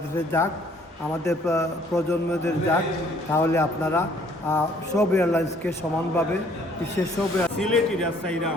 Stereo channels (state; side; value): normal; both; correlation 0.60